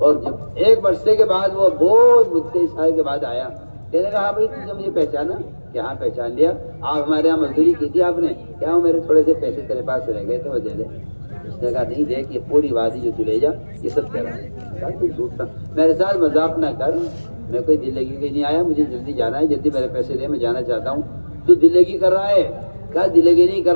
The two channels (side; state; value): both; inverted; correlation -1.00